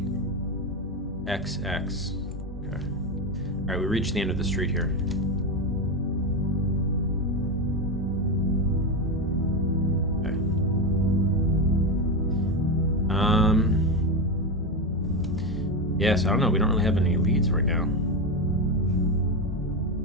XX. Okay. Alright, we reached the end of the street here. Okay. Yes, I don't know, we don't really have any leads right now.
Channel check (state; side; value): normal; both; correlation 0.13